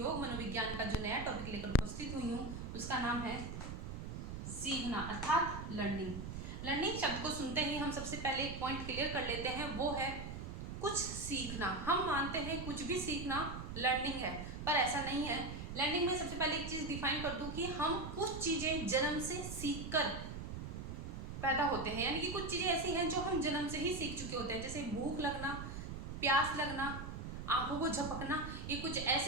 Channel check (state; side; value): noise; right; rumble, 7 dB below the sound